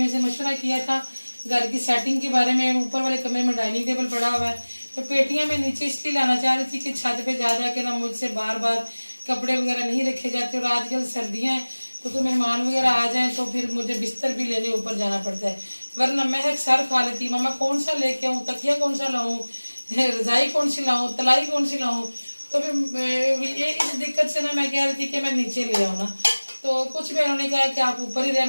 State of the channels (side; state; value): both; inverted; correlation -1.00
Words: से मशवरा किया था घर की सेटिंग के बारे में। ऊपर वाले कमरे में डाइनिंग टेबल पड़ा हुआ है, तो पेटियां मैं नीचे इसलिए लाना चाह रही थी कि छत पे जा जा के ना मुझसे बार बार कपड़े वगैरह नहीं रखे जाते, और आजकल सर्दियां हैं तो कोई मेहमान वगैरह आ जाए तो फिर मुझे बिस्तर भी लेने ऊपर जाना पड़ता है, वरना महक सर खा लेती, मामा कौन सा लेके आऊँ, तकिया कौन सा लाऊं, रजाई कौन सी लाऊं, तलाई कौन सी लाऊं। तो फिर ये इस दिक्कत से ना मैं कह रही थी कि मैं नीचे ले आऊँ ना, तो कुछ बहनों ने कहा कि आप ऊपर ही